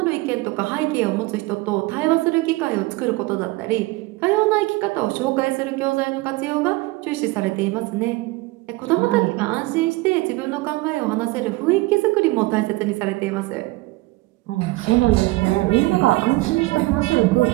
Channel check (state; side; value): quieter; left; 21.5 dB